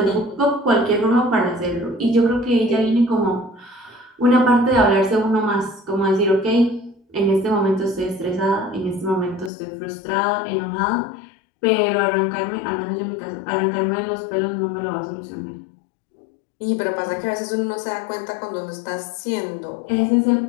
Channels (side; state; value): right; drops out; at 9.5 s